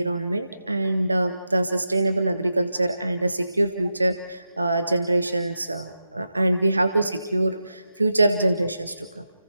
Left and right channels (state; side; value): inverted; both; correlation -0.89